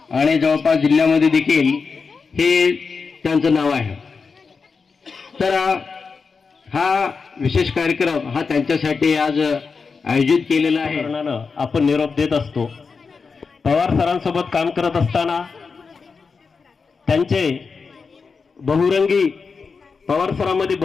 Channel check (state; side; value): quieter; right; 5.0 dB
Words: आणि जवळपास जिल्ह्यामध्ये देखील हे त्यांचं नाव आहे। तर हा विशेष कार्यक्रम हा त्यांच्यासाठी आज आयोजित केलेला आहे। आपण निरोप देत असतो। पवार सरांसोबत काम करत असताना त्यांचे बहुरंगी पवार सरांमध्ये